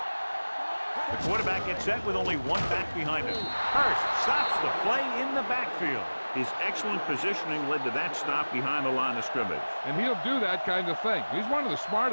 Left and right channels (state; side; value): inverted; both; correlation -1.00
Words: The quarterback gets set with only one back behind him. Hurst stops the play in the backfield. His excellent positioning led to that stop behind the line of scrimmage. And he'll do that kind of thing. He's one of the